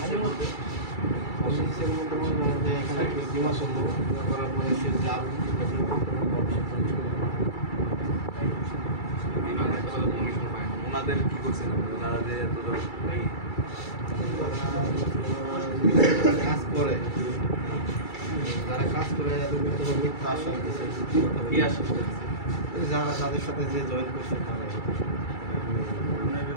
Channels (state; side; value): late; right; 2.3 ms